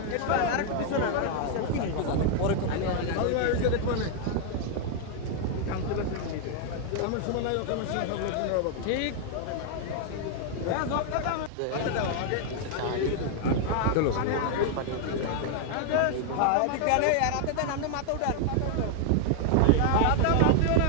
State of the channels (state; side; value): different; both; correlation 0.00